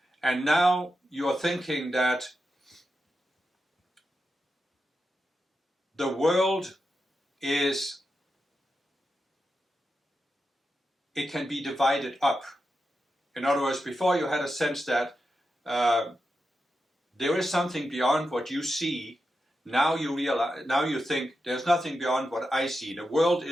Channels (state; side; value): normal; both; correlation 0.89